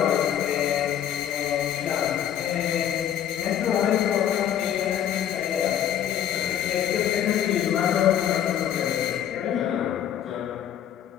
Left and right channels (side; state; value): right; quieter; 10.2 dB